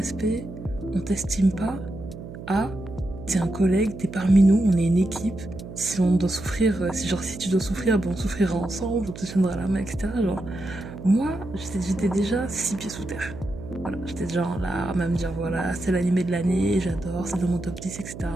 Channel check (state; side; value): noise; right; hum, 12 dB below the sound